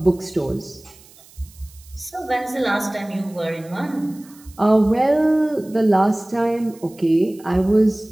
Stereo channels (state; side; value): noise; right; hiss, 25 dB below the sound